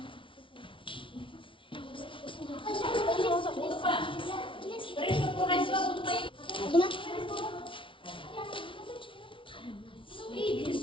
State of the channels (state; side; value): late; right; 0.25 ms